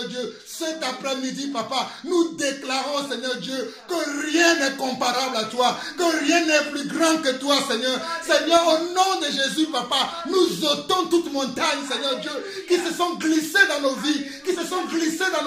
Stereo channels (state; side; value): identical; both; correlation 1.00